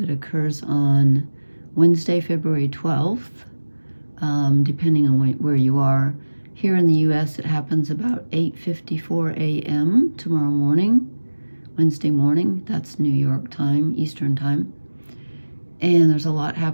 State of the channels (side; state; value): both; inverted; correlation -1.00